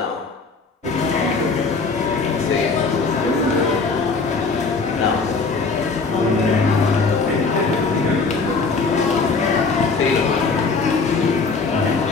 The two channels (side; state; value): right; quieter; 4.3 dB